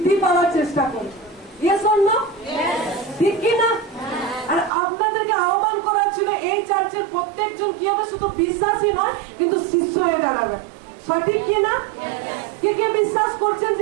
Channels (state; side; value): drops out; left; at 4.7 s